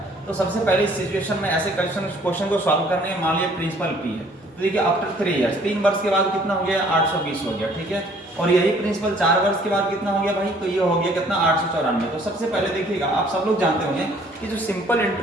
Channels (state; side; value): normal; both; correlation 0.58